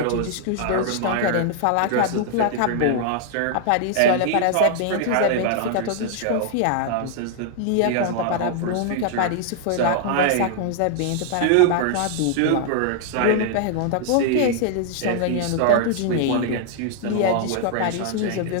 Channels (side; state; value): both; different; correlation -0.01